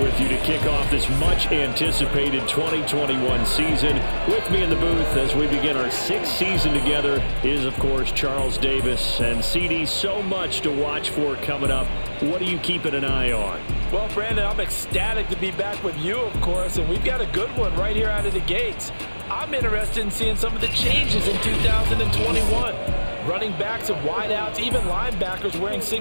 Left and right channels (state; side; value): inverted; both; correlation -1.00